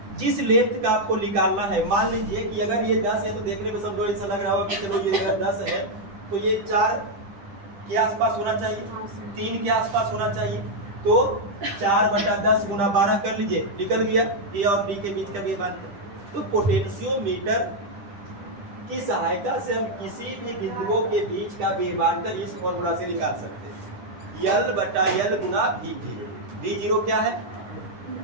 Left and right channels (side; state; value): left; late; 10 ms